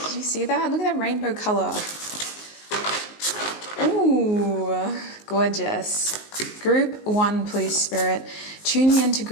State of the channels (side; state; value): right; late; 19 ms